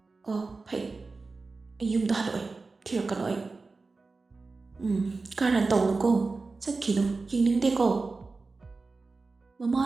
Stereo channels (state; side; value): quieter; left; 3.9 dB